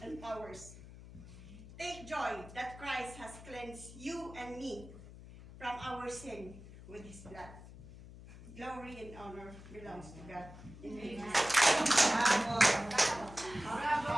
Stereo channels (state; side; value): noise; left; hum, 16 dB below the sound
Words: powers. Take joy that Christ has cleansed you and me from our sin with His blood. Glory and honor belongs to God. Amen. Bravo. Bravo.